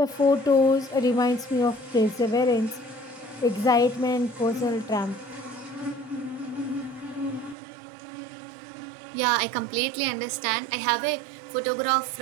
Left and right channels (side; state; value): left; drops out; at 7.6 s